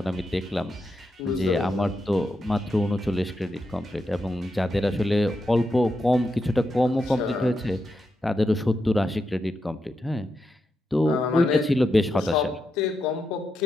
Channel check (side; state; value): both; normal; correlation 0.85